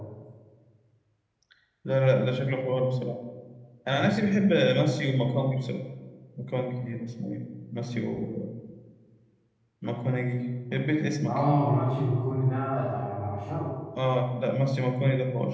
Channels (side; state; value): both; identical; correlation 1.00